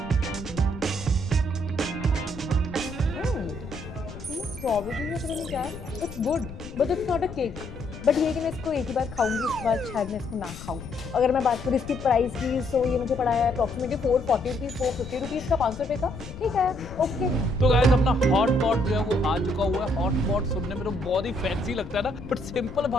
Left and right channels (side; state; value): left; noise; rumble, 13 dB below the sound